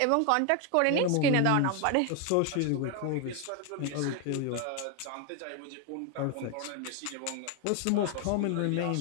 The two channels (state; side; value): different; both; correlation 0.01